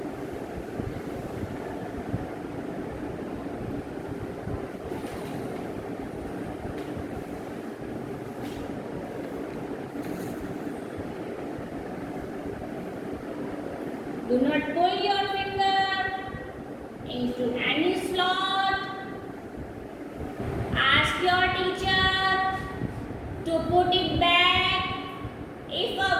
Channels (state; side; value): identical; both; correlation 1.00